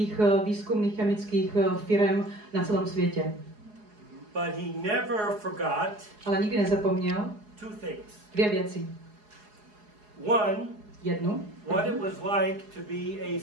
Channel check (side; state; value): left; late; 4.8 ms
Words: výzkumných chemických firm na celém světě. But he never forgot Ale nikdy nezapomněl two things. dvě věci. Jednu. What it was like to be a